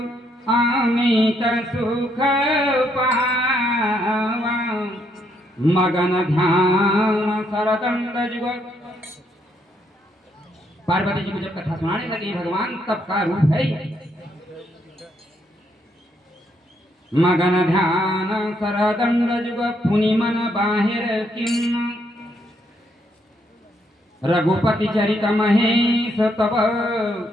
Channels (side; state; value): both; normal; correlation 0.74